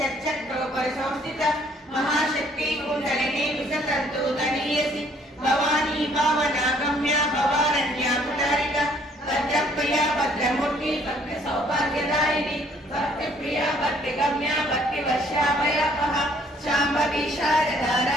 महाशक्ति कुंडलिनी विसतर्तुतनीयसि भवानी भावना गम्या भवारण्या कुटारिका भद्रप्रिया भद्रमूर्ति भक्ति सौभाग्यदायिनी भक्ति प्रिया भक्ति गम्या भक्ति वर्षाभयापहा शांभवी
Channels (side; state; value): both; normal; correlation 0.62